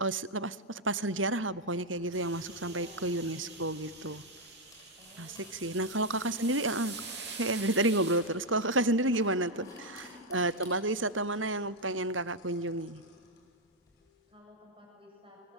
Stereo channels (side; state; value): both; normal; correlation 0.00